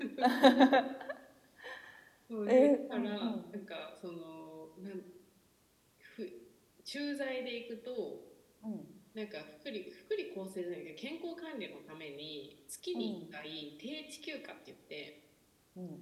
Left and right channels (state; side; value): identical; both; correlation 1.00